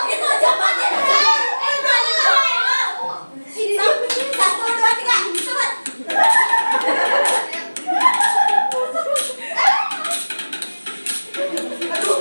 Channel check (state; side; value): inverted; both; correlation -1.00